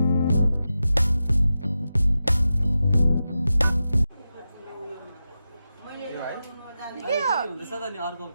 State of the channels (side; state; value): both; inverted; correlation -0.91